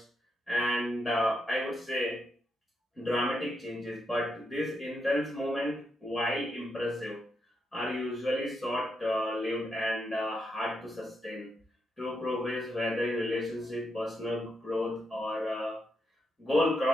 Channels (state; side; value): normal; both; correlation 0.82